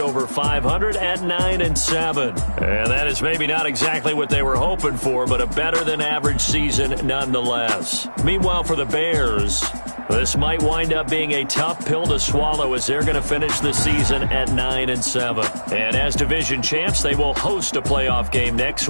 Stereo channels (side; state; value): both; inverted; correlation -1.00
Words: 500 at 9-7. And that is maybe not exactly what they were hoping for, but a better than average season nonetheless. Meanwhile, for the Bears, this might wind up being a tough pill to swallow as they're going to finish the season at 9-7. And as division champs, they will host a playoff game next